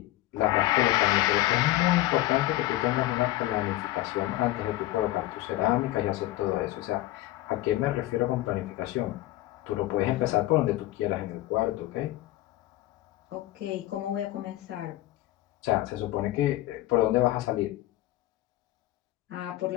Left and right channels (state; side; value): quieter; right; 16.4 dB